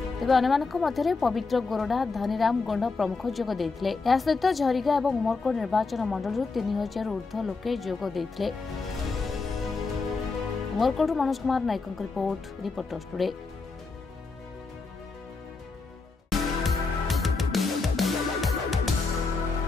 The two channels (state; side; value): quieter; right; 4.1 dB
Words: तेज अन्य पवित्र गोरडा धनीराम गोंड प्रमुख जोग देथिले। या सहित झरिका और उमरकोट निर्वाचन मंडल 3000 ऊर्ध्व लोके जोग देथिले। Umarkot Manoj Kumar Nayak report reporters today.